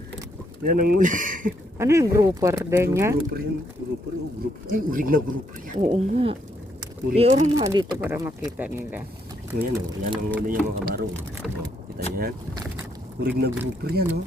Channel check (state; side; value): normal; both; correlation 0.74